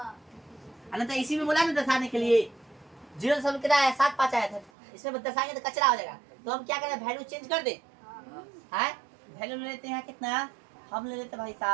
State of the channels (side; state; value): left; drops out; at 4.7 s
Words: अनंत इसी में बोला ना दर्शाने के लिए, 0 सब कितना है 7 5 आया था, इसमें दर्शाएंगे तो कचरा हो जाएगा, तो हम क्या करें वैल्यू चेंज कर दे, है वैल्यू ले लेते हैं कितना, हम ले लेते भाई